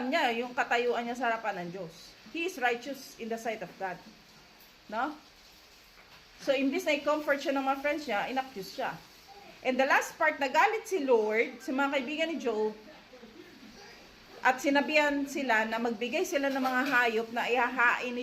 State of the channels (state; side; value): identical; both; correlation 1.00